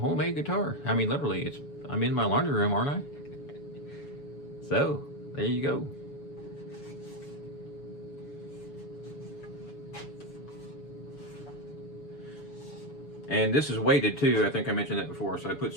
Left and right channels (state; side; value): late; right; 7.0 ms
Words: guitar. I mean, literally, I'm in my laundry room, aren't I? So, there you go. And this is weighted too. I think I mentioned that before. So I put